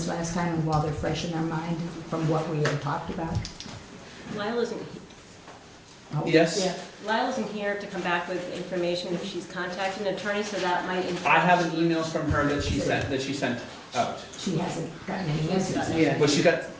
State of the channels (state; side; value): identical; both; correlation 1.00